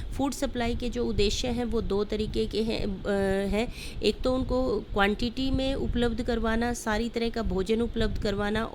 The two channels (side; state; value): both; identical; correlation 1.00